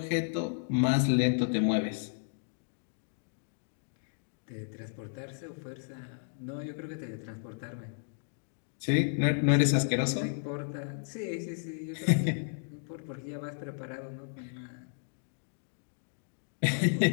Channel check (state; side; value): silent; right; digital silence